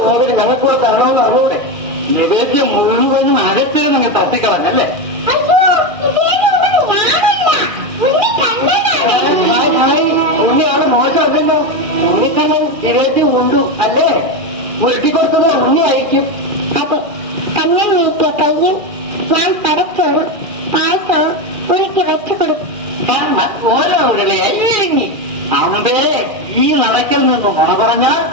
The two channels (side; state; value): left; late; 2.4 ms